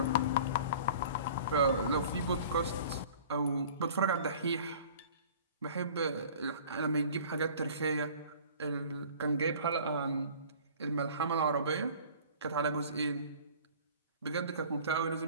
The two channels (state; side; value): inverted; both; correlation -0.46